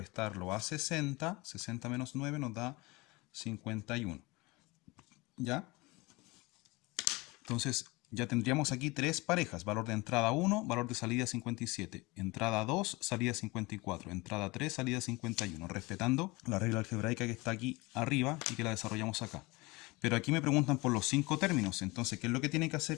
a 60, 60 menos 9 nos da 51. ¿Ya? Entonces, ya tendríamos aquí tres parejas. Valor de entrada 1, valor de salida 57. Entrada 2, salida 54. Entrada 3, salida 51. Respetando la regla algebraica que está aquí arriba y que la desarrollamos acá. Pero aquí me preguntan por los 5 términos. Entonces, ¿qué es lo que tiene que hacer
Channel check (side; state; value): right; quieter; 23.7 dB